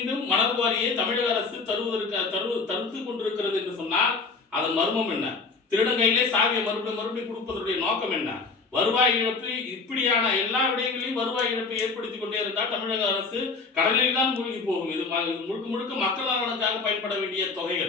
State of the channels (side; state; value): right; quieter; 4.4 dB